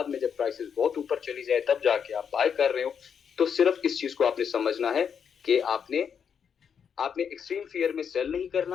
में जब प्राइसेस बहुत ऊपर चली जाए तब जाके आप बाय कर रहे हो। तो सिर्फ इस चीज को आपने समझना है कि आपने एक्सट्रीम फियर में सेल नहीं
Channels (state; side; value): quieter; right; 7.3 dB